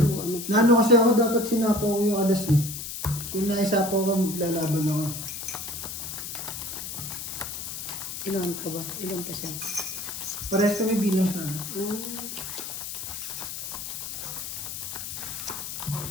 ano pa. Nano kasi ako dapat sinapaw ko yung alas eh. Kung naisapaw ka, maglalaban ako. Ilan ka ba? Ilan pa siya? Parehas kami bilang sana.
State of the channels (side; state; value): left; noise; hiss, 7 dB below the sound